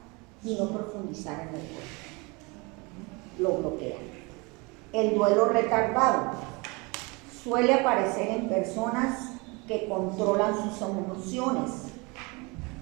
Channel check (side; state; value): left; quieter; 27.6 dB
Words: y no profundizar en el duelo, lo bloquea. El duelo retardado suele aparecer en personas que controlan sus